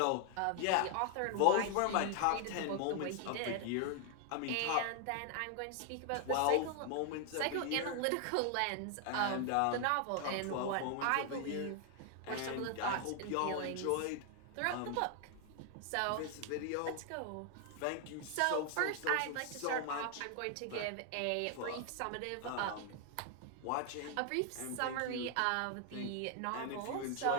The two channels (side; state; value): both; different; correlation 0.00